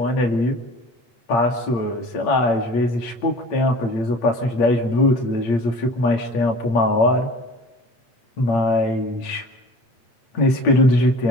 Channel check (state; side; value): late; right; 8.7 ms